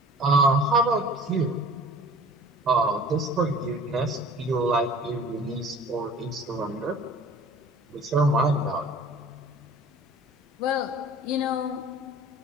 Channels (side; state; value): both; normal; correlation 0.46